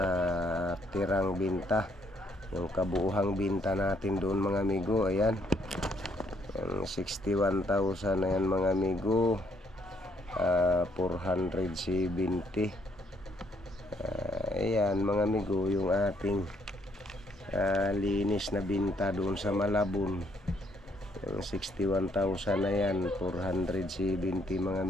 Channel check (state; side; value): normal; both; correlation 0.69